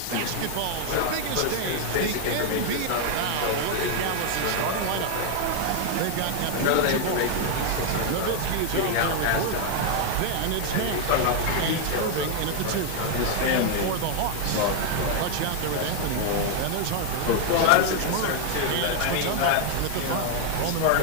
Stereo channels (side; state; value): both; different; correlation 0.00